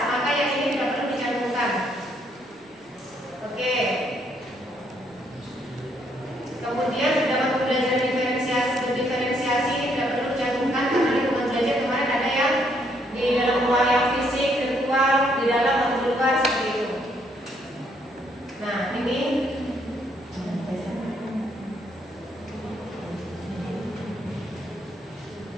maka yang ini tidak perlu dicantumkan. Oke. Kemudian dalam pembelajaran diferensiasi ini tidak perlu dicantumkan karena lingkungan belajar kemarin ada yang di dalam ruang yang fisik, virtual, di dalam atau di luar seperti itu. Nah, ini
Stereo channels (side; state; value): both; normal; correlation 0.71